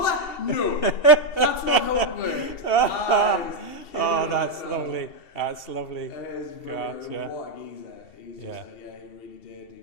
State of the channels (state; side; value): late; right; 2.7 ms